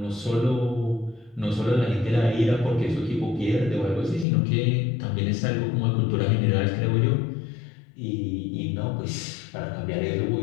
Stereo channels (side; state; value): right; drops out; at 4.2 s